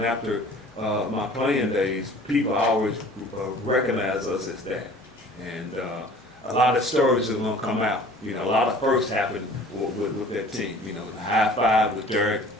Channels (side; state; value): both; normal; correlation 0.48